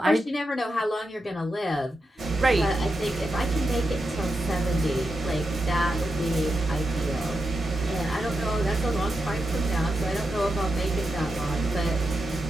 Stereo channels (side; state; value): both; normal; correlation 0.87